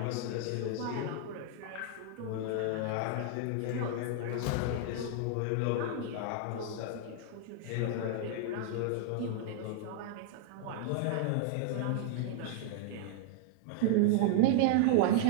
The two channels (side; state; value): both; different; correlation -0.01